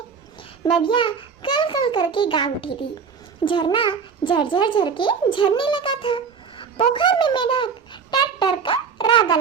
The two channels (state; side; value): quieter; left; 6.1 dB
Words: नदियाँ कल कल करके गा उठी थी। झरना झरझर झर के झरने लगा था। पोखर में मेढक टर टर का राग